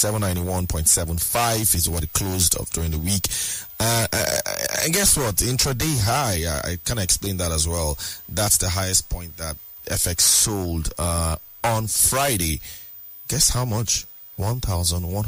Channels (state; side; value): identical; both; correlation 1.00